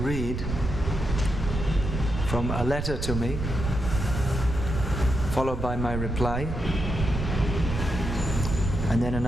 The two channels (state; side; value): noise; right; rumble, 3 dB below the sound